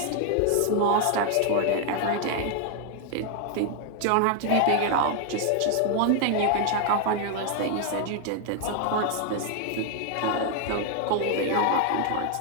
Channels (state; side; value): different; both; correlation 0.00